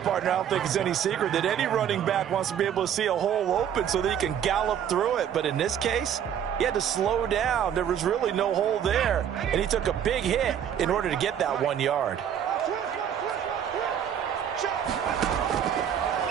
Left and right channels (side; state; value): left; quieter; 9.2 dB